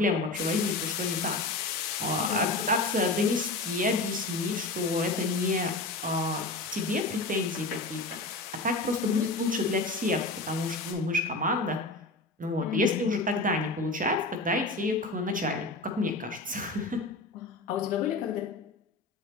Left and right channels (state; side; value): quieter; right; 3.1 dB